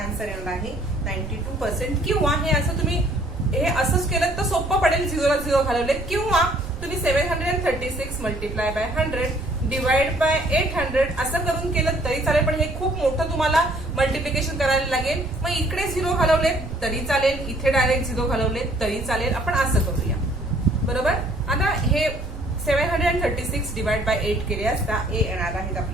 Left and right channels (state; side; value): noise; right; rumble, 12 dB below the sound